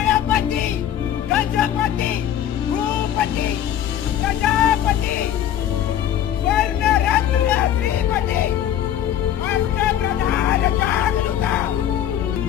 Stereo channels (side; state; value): right; quieter; 10.7 dB